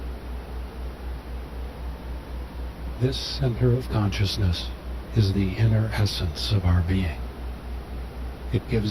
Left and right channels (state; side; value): identical; both; correlation 1.00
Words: This center of consciousness is the inner essence of our being. It